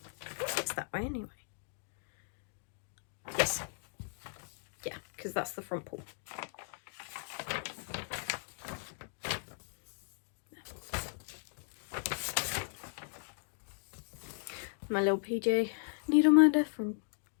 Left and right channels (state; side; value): silent; right; digital silence